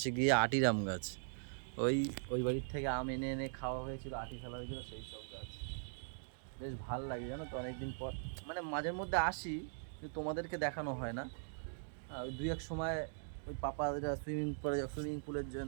গিয়ে আটির আম গাছ। ওই ওই বাড়ির থেকে আম এনে এনে খাওয়া হয়েছিল, আটি ফেলা হয়েছিল, সেই সব গাছ। বেশ ভাল লাগে জানো তো, অনেকদিন পর মানে মাঝের মধ্যে আসি, কিন্তু তোমাদেরকে দেখানো হয় না। ওই দুই এক সময় ওই পাপারা সুইমিং পুলের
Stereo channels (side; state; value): left; silent; digital silence